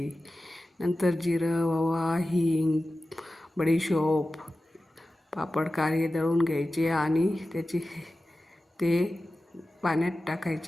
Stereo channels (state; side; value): normal; both; correlation 0.95